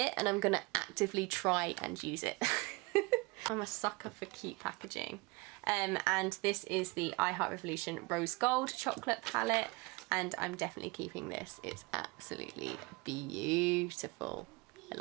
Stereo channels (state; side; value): quieter; left; 25.9 dB